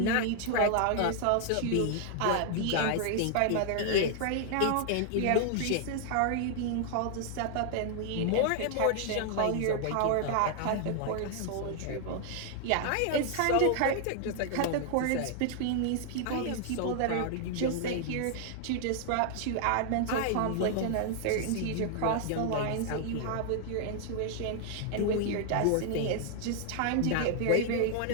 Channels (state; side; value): different; both; correlation 0.00